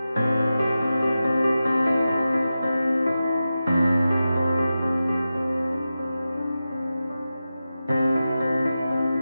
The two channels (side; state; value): both; inverted; correlation -0.92